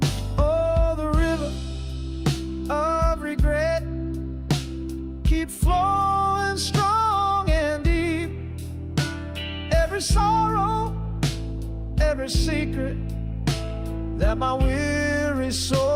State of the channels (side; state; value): both; identical; correlation 1.00